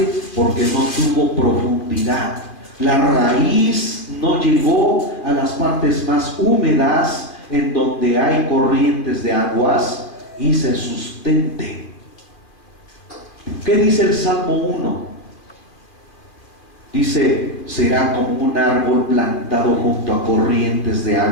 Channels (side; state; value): right; late; 2.4 ms